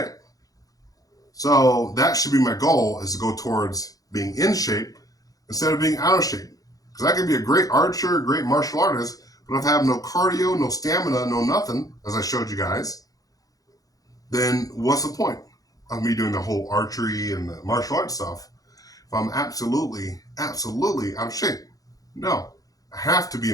So that should be my goal: is to go towards being in shape instead of being out of shape. Because I could be a great archer, a great martial artist, but if I have no cardio, no stamina, no nothing, as I showed you guys, then what's the point of me doing the whole archery and the martial arts stuff if I'm absolutely out of shape? No. I have to be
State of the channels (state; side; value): late; right; 0.17 ms